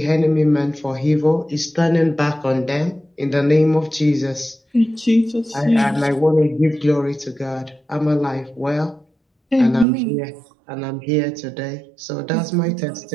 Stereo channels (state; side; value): drops out; left; at 9.9 s